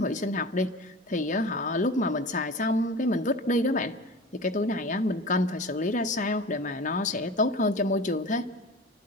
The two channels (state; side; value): normal; both; correlation 0.35